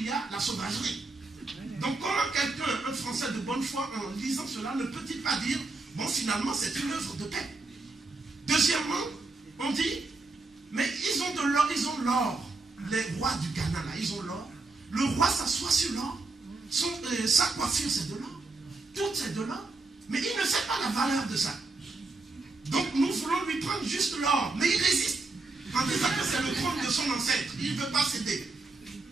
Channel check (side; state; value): left; quieter; 3.5 dB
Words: y a la sauvagerie. Donc comment quelqu'un, un Français de bonne foi, en lisant cela, ne peut-il pas dire, bon finalement c'est une œuvre de paix. Deuxièmement, on dit, mais ils ont de l'or, ils ont l'or. Les rois du Ghana, là, ils ont l'or. Le roi s'assoit sur l'or. Sa coiffure, c'est de l'or. Tout, c'est de l'or. Mais il ne sait pas la valeur de ça. Donc, nous voulons lui prendre juste l'or. Mais il résiste. En disant que c'est le trône de son ancêtre. Il ne veut pas céder.